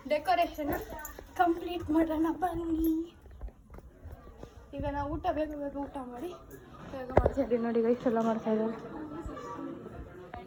ಡೆಕೋರೇಷನ್ ಕಂಪ್ಲೀಟ್ ಮಾಡೋಣ ಬನ್ನಿ. ಈಗ ನಾವು ಬೇಗ ಊಟ ಮಾಡಿ ಬೇಗ ಮಾಡ್ತಾ ಇದ್ದೀವಿ ನೋಡಿ ಗೈಸ್ ಎಲ್ಲ ಮಾಡ್ತಾ ಇದ್ದಾರೆ.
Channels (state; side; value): identical; both; correlation 1.00